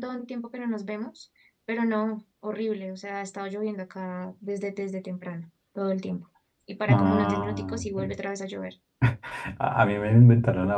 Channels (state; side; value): identical; both; correlation 1.00